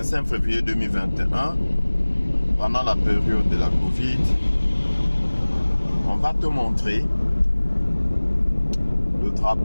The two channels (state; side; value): inverted; both; correlation -1.00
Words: février 2021, pendant la période de la Covid, on va te montrer le